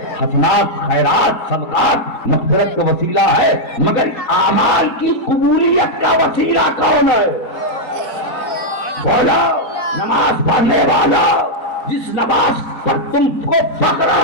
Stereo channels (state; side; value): late; right; 4.2 ms